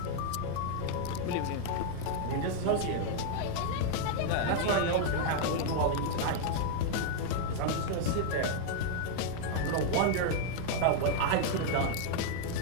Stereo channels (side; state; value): both; different; correlation 0.00